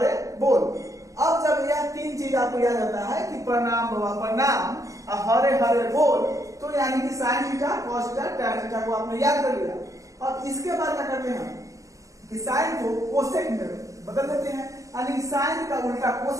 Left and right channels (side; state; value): left; late; 0.16 ms